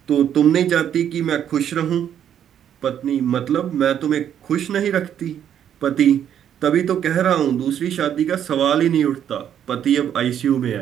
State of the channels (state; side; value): quieter; left; 9.6 dB